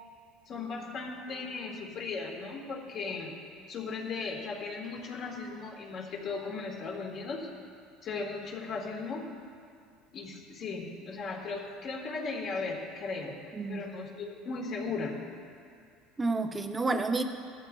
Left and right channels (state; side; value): normal; both; correlation 0.64